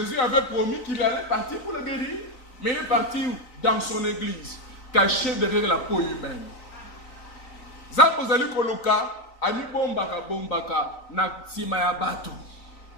avait promis qu'il allait partir pour le guérir. Mais il est parti où? Dans son église, caché derrière la peau humaine. Zapozali Koluka, Ami bombaka bombaka na simaya batu.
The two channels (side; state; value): right; late; 3.9 ms